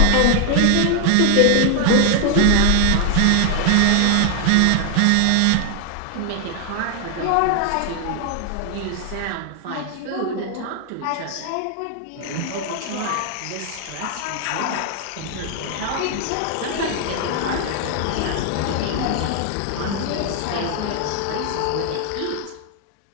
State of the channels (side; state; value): both; different; correlation 0.00